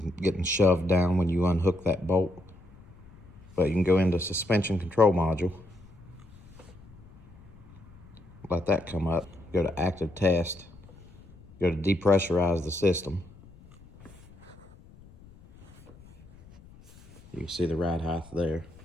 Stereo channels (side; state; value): left; noise; rumble, 23 dB below the sound